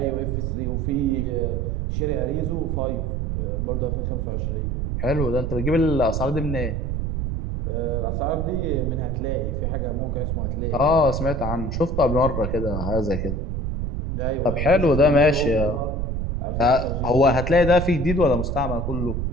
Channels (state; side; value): noise; right; rumble, 1 dB below the sound